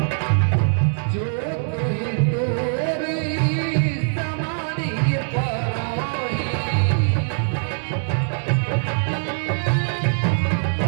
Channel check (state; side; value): silent; left; digital silence